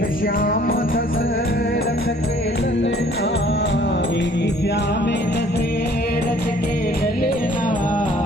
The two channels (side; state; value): both; normal; correlation 0.56